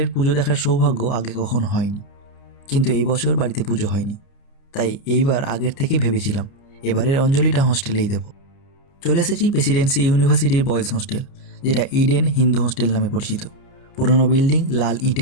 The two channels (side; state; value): right; late; 29 ms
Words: পুজো দেখার সৌভাগ্য আগে কখনো হয়নি। কিন্তু এই বছর বাড়িতে পুজো হয়নি, তাই এইবার আগের থেকেই ভেবেছিলাম এবারের অঞ্জলিটা হোস্টেলেই দেব। চলে এসেছি প্রেসিডেন্সি ইউনিভার্সিটির বয়েজ হোস্টেল, যেটা ইডেন হিন্দু হোস্টেল নামে পরিচিত। পুরনো বিল্ডিং, লাল